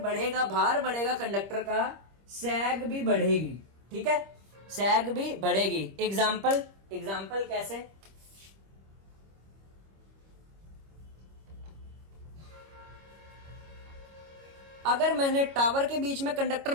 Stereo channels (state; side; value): late; left; 25 ms